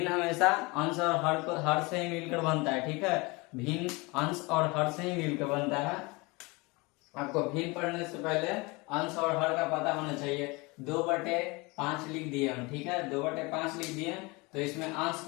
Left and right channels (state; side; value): quieter; right; 25.7 dB